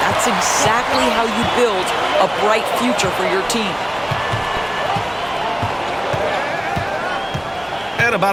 That's exactly how you build a bright future for your team. And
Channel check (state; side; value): noise; right; hum, 27 dB below the sound